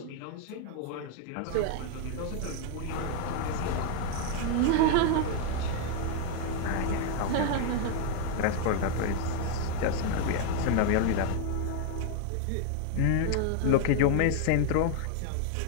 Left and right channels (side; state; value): both; different; correlation 0.00